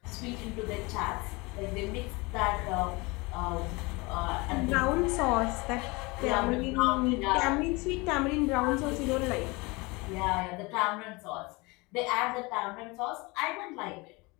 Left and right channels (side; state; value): right; quieter; 25.3 dB